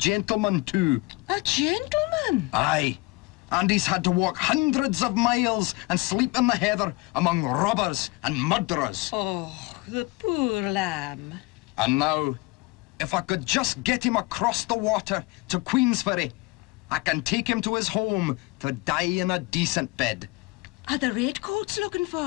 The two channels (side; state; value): right; quieter; 24.0 dB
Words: too. A gentleman? Aye. And he's had to walk hundreds of miles and sleep in the heather among robbers and murderers. Oh, the poor lamb. And now, if I could just get him across the water to Queensferry, I can take him to his home to die in a decent bed. Are the redcoats looking